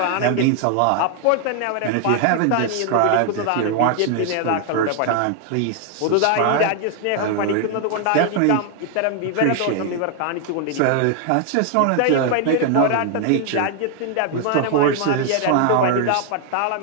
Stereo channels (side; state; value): both; different; correlation 0.00